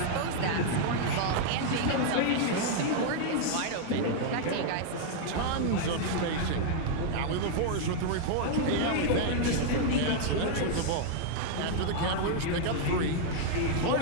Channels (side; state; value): both; different; correlation 0.00